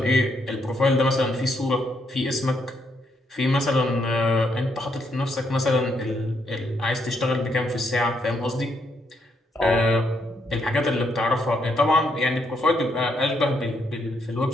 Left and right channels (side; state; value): both; normal; correlation 0.75